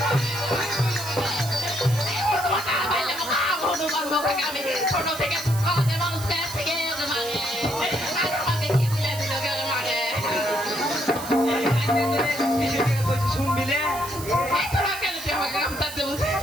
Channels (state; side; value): noise; right; hiss, 11 dB below the sound